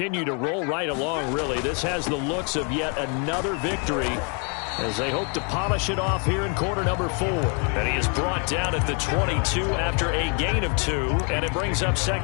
to roll right along, really. This has the looks of yet another victory as they hope to polish it off here in quarter number 4. And he is brought down at the 22 after a gain of 2, and it brings up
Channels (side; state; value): right; quieter; 37.4 dB